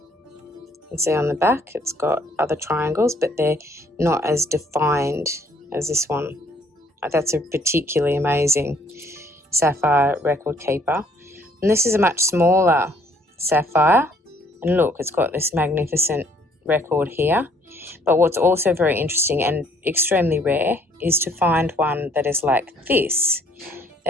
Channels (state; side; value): normal; both; correlation 0.63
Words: You can see on the back it's got other triangles, but they're not as defined as this one. That's a particularly amazing sapphire record keeper. And this is a much smaller sapphire. And look, it's got this magnificent record here. But what's also very interesting and extremely rare is to find one that is like this.